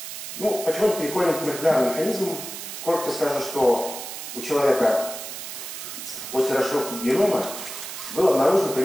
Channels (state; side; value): noise; right; hiss, 9 dB below the sound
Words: Ну, почему переходим к молекулярным механизмам? Коротко скажу, что у человека после расшифровки генома было обнаружено